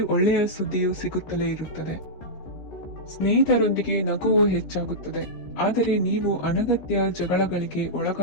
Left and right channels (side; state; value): right; late; 15 ms